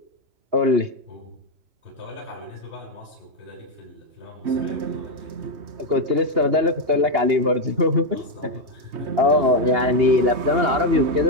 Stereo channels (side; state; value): left; late; 2.8 ms